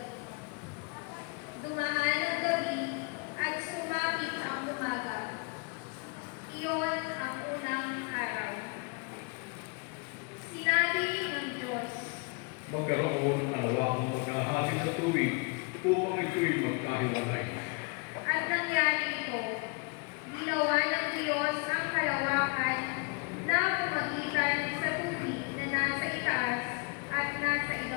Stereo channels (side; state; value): right; quieter; 32.9 dB